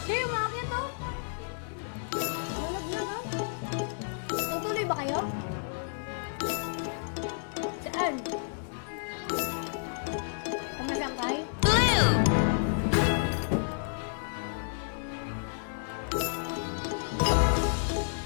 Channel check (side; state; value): right; silent; digital silence